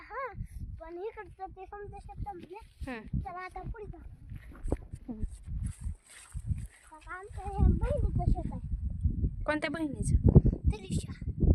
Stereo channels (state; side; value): identical; both; correlation 1.00